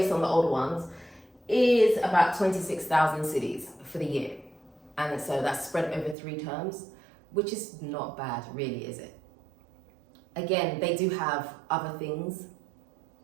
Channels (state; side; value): drops out; left; at 6.2 s